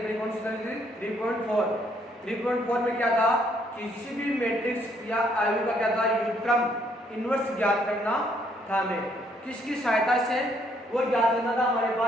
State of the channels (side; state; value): both; normal; correlation 0.68